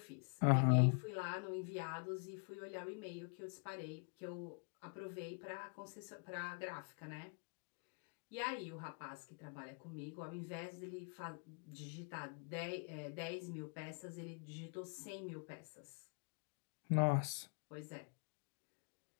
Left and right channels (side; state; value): right; quieter; 39.7 dB